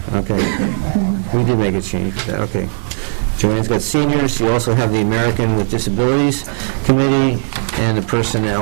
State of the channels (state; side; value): silent; left; digital silence